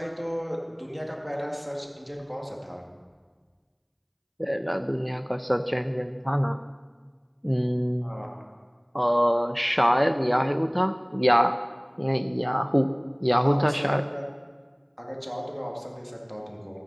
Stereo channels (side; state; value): both; identical; correlation 1.00